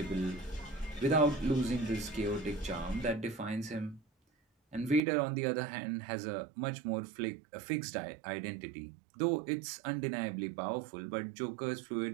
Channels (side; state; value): left; drops out; at 5.0 s